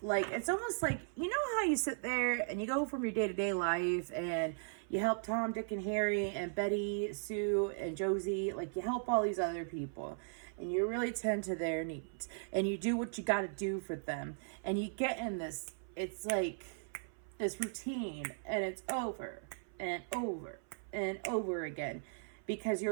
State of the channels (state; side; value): silent; left; 53 dB below the other